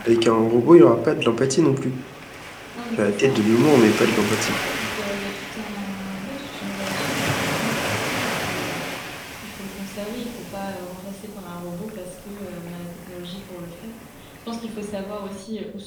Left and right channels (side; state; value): both; identical; correlation 1.00